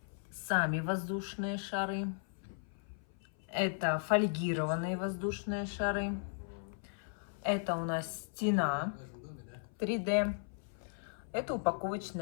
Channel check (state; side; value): silent; right; 53 dB below the other